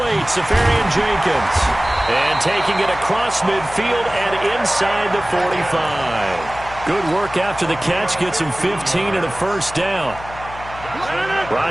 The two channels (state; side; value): noise; left; hum, 15 dB below the sound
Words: Safarian Jenkins. And taking it across midfield and inside the 45. Good work after the catch, gets him 15 and a first down.